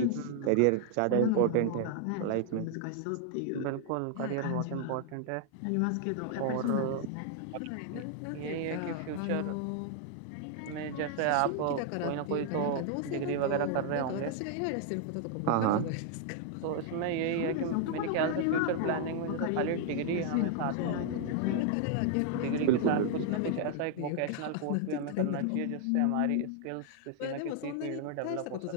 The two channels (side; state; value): both; different; correlation 0.00